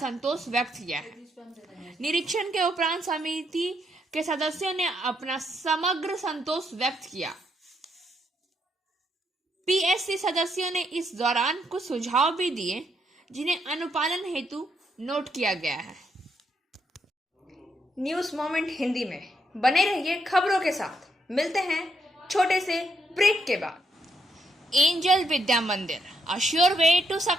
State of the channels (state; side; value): normal; both; correlation 0.76